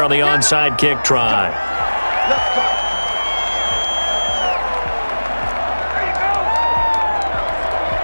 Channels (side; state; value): both; inverted; correlation -1.00